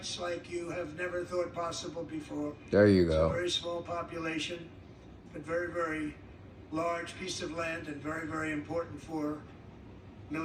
like you have never thought possible before. There you It's a go. very small population, but very, very large piece of land and very, very important for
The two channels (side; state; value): both; identical; correlation 1.00